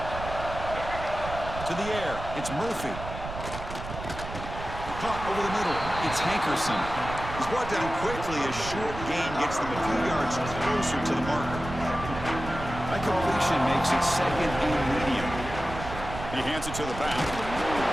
To the air, it's Murphy. Caught over the middle, it's Hankerson. He's brought down quickly as short gain gets them a few yards closer to the marker. That completion makes it second and medium. He hands it to the back.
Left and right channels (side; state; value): right; noise; rumble, 9 dB below the sound